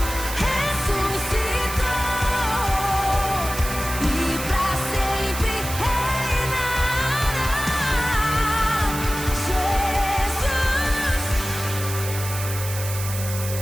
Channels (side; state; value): right; noise; hiss, 8 dB below the sound